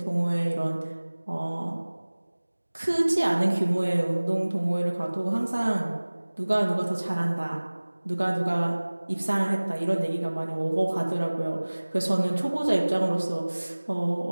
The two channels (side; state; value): both; inverted; correlation -1.00